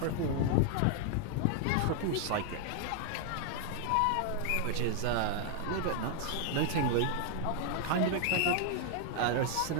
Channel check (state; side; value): different; both; correlation 0.00